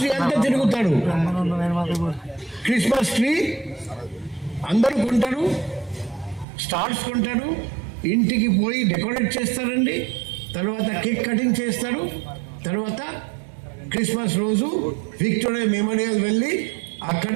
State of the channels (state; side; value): drops out; left; at 6.5 s